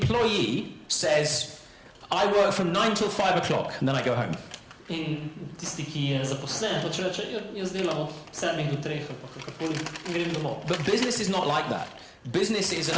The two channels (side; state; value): both; identical; correlation 1.00